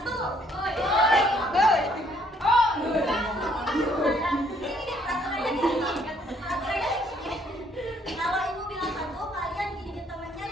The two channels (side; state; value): both; normal; correlation 0.65